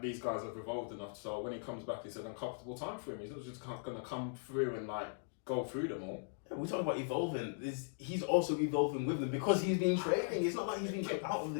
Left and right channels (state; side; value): silent; right; digital silence